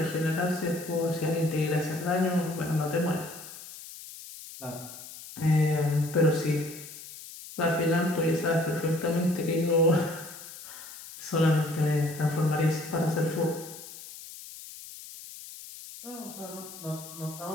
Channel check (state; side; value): noise; left; hiss, 14 dB below the sound